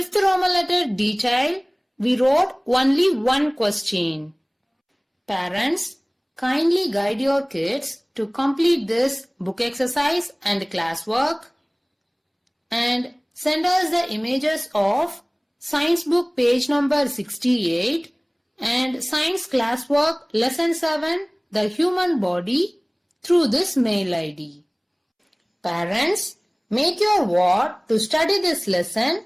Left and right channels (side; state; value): both; identical; correlation 1.00